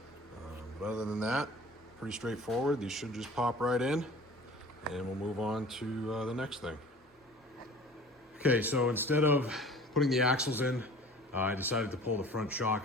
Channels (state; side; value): normal; both; correlation 0.44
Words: But other than that, pretty straightforward. These should just pop right in, and we'll move on to the next thing. Okay, so instead of putting the axles in, I decided to pull the front